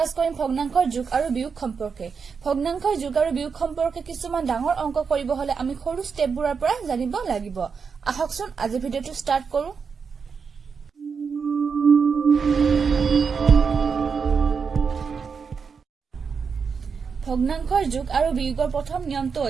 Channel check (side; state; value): left; quieter; 5.8 dB